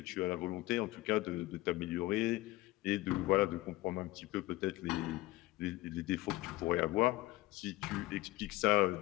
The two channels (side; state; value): right; quieter; 18.2 dB